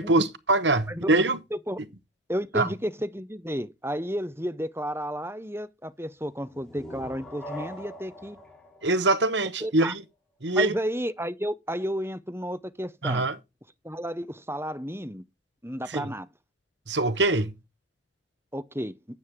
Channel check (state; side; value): normal; both; correlation 0.28